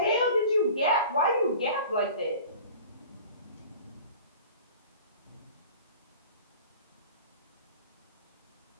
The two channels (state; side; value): inverted; both; correlation -0.42